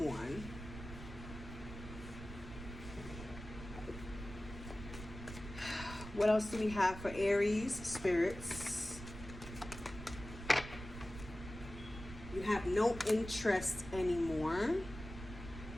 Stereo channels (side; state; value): right; noise; rumble, 11 dB below the sound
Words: What else do we have for Aries, spirits? You have no interest anymore.